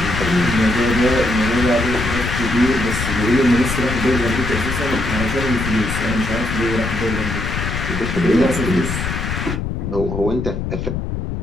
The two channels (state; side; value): noise; left; rumble, 3 dB below the sound